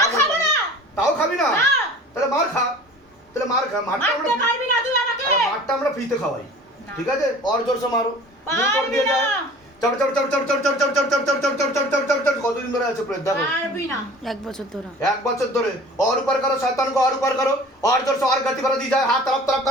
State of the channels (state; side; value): normal; both; correlation 0.44